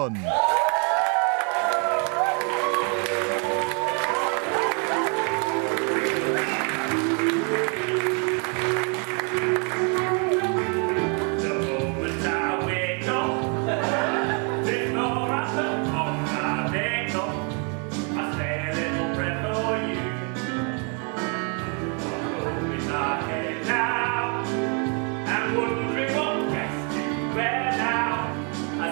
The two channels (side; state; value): left; quieter; 37.5 dB